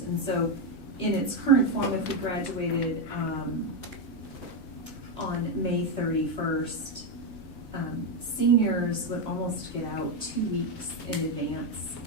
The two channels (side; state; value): right; late; 7.6 ms